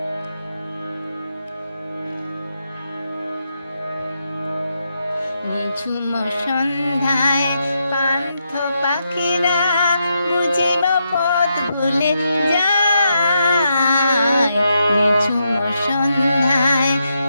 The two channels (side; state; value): both; inverted; correlation -0.82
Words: নিঝুম সন্ধ্যায় পান্থ পাখিরা বুঝিব পথ ভুলে যায়। নিঝুম সন্ধ্যায়